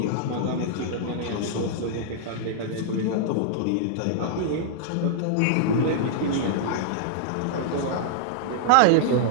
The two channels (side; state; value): both; different; correlation -0.01